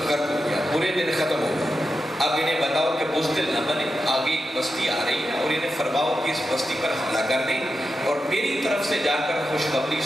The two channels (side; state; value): both; normal; correlation 0.89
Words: غرق ہو گیا، برے دن ختم ہو گئے، اب انہیں بتاؤ کہ بزدل نہ بنے، آگے ایک بستی آ رہی ہے اور انہیں فرماؤ کہ اس بستی پر حملہ کر دیں، اور میری طرف سے جا کر خوشخبری